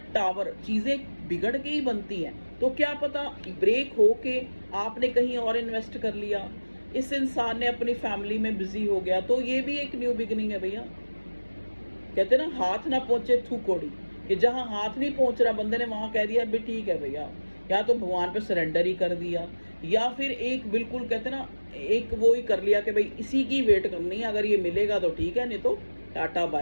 टावर चीज़ें बिगड़ के ही बनती हैं, तो क्या पता ब्रेक हो के आपने कहीं और इन्वेस्ट कर लिया, इस इंसान ने अपनी फैमिली में बिजी हो गया, तो ये भी एक न्यू बिगिनिंग है भैया। कहते हैं ना, हाथ ना पहुंचे थू कोड़ी, कि जहां हाथ नहीं पहुंच रहा बंदे ने वहां कह दिया भी ठीक है भैया, या तो भगवान पे सरेंडर ही कर दिया, या फिर एक बिल्कुल कहते हैं ना, एक वो ही कर लिया कि भाई इसी की वेट करनी है, अगर ये मिलेगा तो ठीक है, नहीं तो टाटा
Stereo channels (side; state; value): both; inverted; correlation -1.00